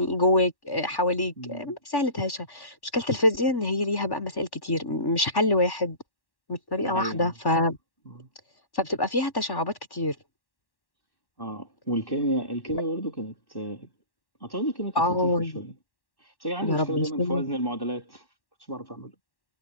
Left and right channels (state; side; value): late; right; 1.1 ms